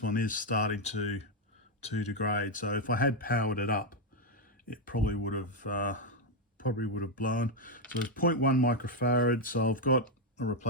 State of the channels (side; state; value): both; normal; correlation 0.03